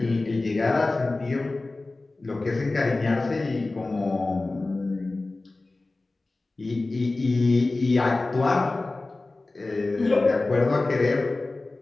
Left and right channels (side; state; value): right; quieter; 3.2 dB